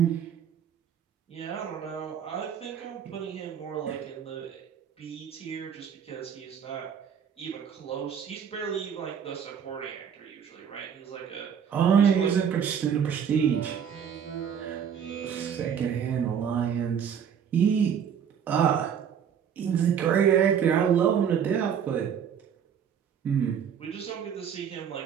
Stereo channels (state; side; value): quieter; left; 8.0 dB